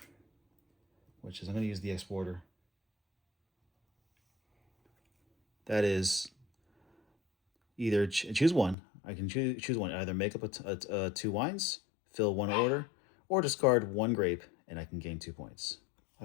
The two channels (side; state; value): right; drops out; at 8.8 s